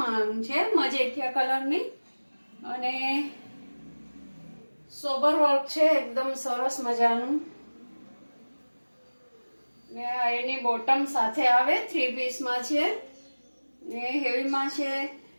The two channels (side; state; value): both; inverted; correlation -1.00